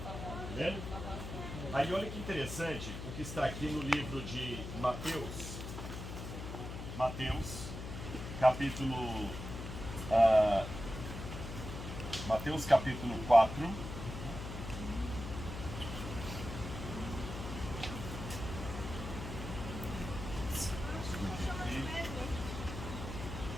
lembra? Aí olha que interessante o que está aqui no livro de Mateus. Mateus capítulo 4.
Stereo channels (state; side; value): noise; left; hum, 7 dB below the sound